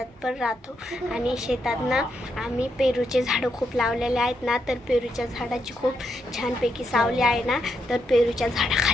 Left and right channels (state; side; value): normal; both; correlation 0.80